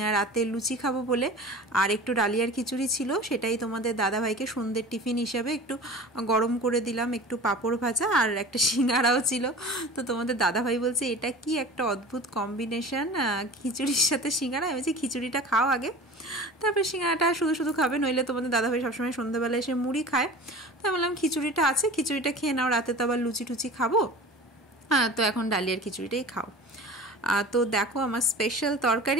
রাতে লুচি খাবো বলে, আর একটু ডালিয়ার খিচুড়ি ছিল, সেটাই তোমাদের দাদাভাইকে সন্ধ্যের টিফিন হিসাবে একটু গরম করে দিলাম, একটু পাঁপড় ভাজা আর একটা সিঙ্গারাও ছিল। তো তোমাদের দাদাভাই বলছে এটা কি একটা অদ্ভুত কম্বিনেশন, খিচুড়ির সাথে সিঙ্গারা। আমি বলছি খিচুড়িটা খাও আগে, তারপরে সিঙ্গারাটা শুধু শুধু খাবে, নইলে তোমাদের দাদাভাই সবসময় সন্ধ্যাবেলা এসে মুড়ি খায়। তো আমি বললাম খিচুড়িটা আছে, খিচুড়িটা খেয়ে নাও, রাতে তো আবার লুচি টুচি খাবো, হ্যাঁ তো এখন ডালিয়ার খিচুড়িটাই খাও। তো দেখো আমার স্পেশাল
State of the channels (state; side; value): normal; both; correlation 0.38